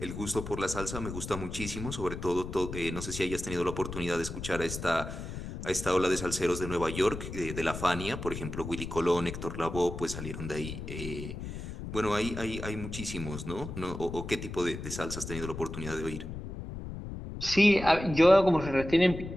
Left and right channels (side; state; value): left; noise; rumble, 8 dB below the sound